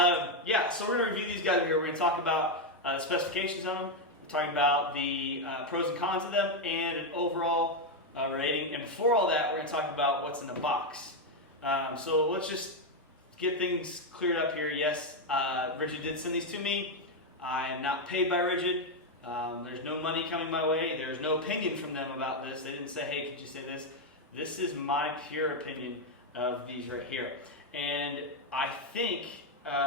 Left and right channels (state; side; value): normal; both; correlation 0.04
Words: yeah, so we're going to review these guys over here. We're going to talk about the specifications on them. Talking about the pros and cons of them and an overall rating. And before all that, we're going to talk about what's in the box. So let's just get things cleared up here. Yes, Ridgid did send these to me. I am not paid by Ridgid. There's no money coming my way. There's no opinion from them about this. They didn't say, hey, could you say this? This is my pure opinion of these right here. And I think